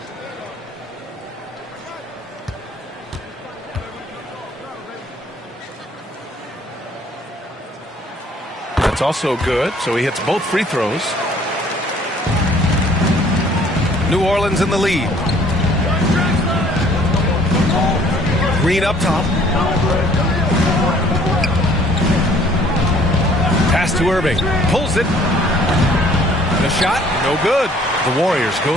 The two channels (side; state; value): both; normal; correlation 0.57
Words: That's also good, so he hits both free throws. New Orleans in the lead. Green up top. Pass to Irving. Pulls it. The shot, no good. The Warriors